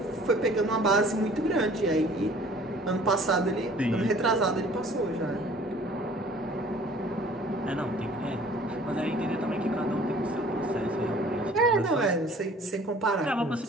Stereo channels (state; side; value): normal; both; correlation 0.51